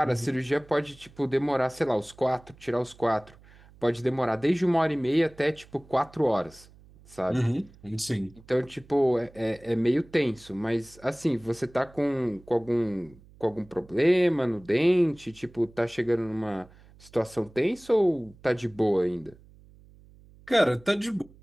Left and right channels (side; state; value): right; noise; hum, 25 dB below the sound